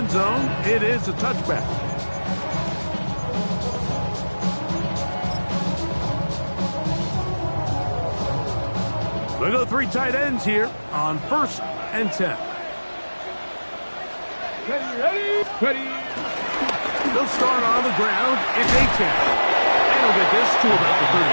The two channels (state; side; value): inverted; both; correlation -1.00